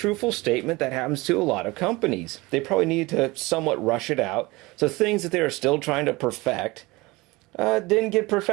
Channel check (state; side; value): quieter; left; 22.4 dB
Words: statement that happens to a lot of companies. They probably need to somewhat rush it out, so things that they are still trying to perfect didn't get